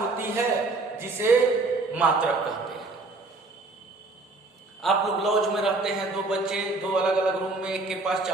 है जिसे मात्रक कहते हैं। आप लोग लॉज में रहते हैं, 2 बच्चे 2 अलग अलग रूम में, एक के पास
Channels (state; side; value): quieter; left; 3.4 dB